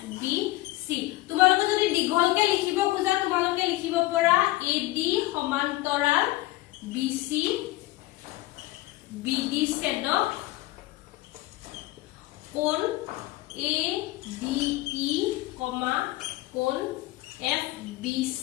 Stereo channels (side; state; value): right; quieter; 18.2 dB